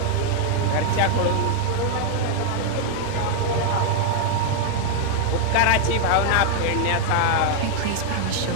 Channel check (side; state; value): both; different; correlation 0.00